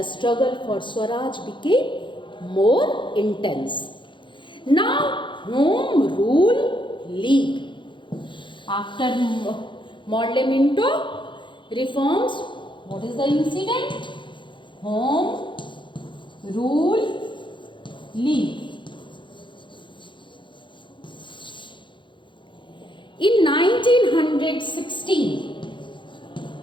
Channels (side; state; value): right; late; 0.23 ms